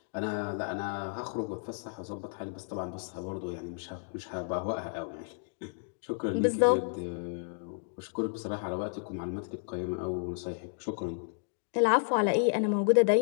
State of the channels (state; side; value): silent; right; digital silence